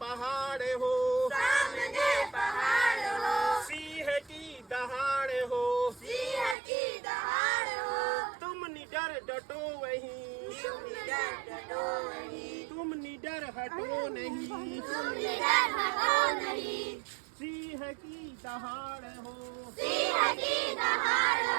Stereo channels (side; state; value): left; drops out; at 6.6 s